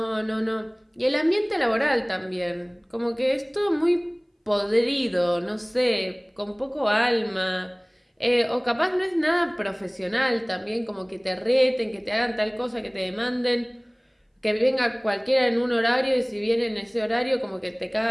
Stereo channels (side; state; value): both; identical; correlation 1.00